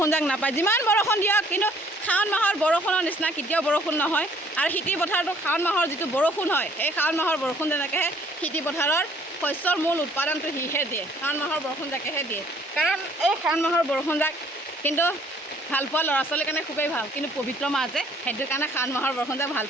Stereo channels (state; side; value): normal; both; correlation 0.60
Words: যাক নাপায়। যিমান বৰষুণ দিয়ক কিন্তু শাওণ মাহৰ বৰষুণৰ নিচিনা কেতিয়াও বৰষুণ নহয়। আৰু খেতি পথাৰটো শাওণ মাহৰ যিটো বৰষুণ হয়, সেই শাওণ মাহৰ বৰষুণ যেনেকৈহে খেতি পথাৰৰ শস্যৰ মূল উৎপাদনটো সিহে দিয়ে, শাওণ মাহৰ বৰষুণ জাকেহে দিয়ে। কাৰণ এই শাওণ মাহৰ বৰষুণ জাক কিন্তু ভাল পোৱা ল'ৰা ছোৱালীৰ কাৰণে খুবেই ভাল, কিন্তু পবিত্ৰ মাহ যে সেইটো কাৰণে শাওণ মাহৰ বৰষুণ জাক ভাল